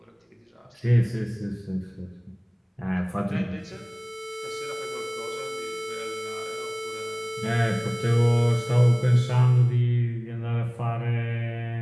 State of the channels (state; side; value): identical; both; correlation 1.00